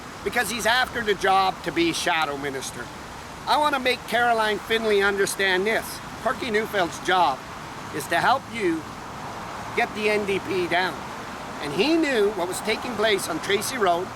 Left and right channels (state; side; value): identical; both; correlation 1.00